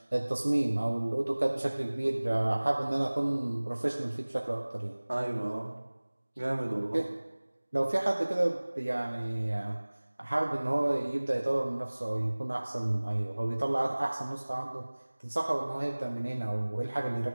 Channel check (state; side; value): inverted; both; correlation -1.00